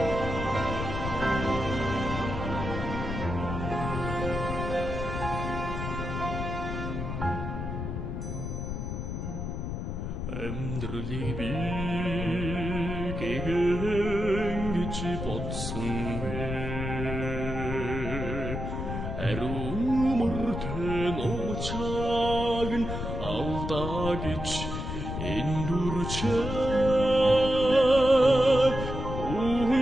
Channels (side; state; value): left; noise; rumble, 4 dB below the sound